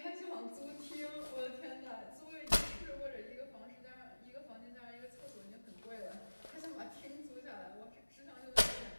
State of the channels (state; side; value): inverted; both; correlation -1.00